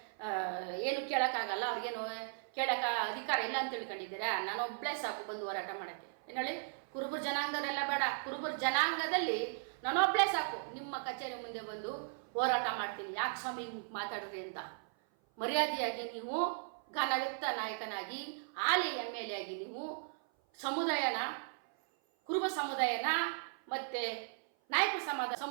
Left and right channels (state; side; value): silent; left; 53 dB below the other